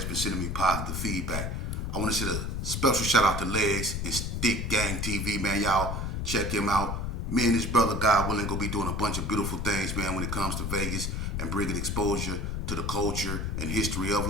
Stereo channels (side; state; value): left; noise; rumble, 2 dB below the sound